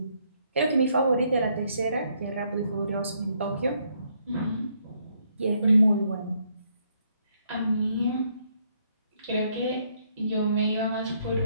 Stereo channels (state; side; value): inverted; both; correlation -0.72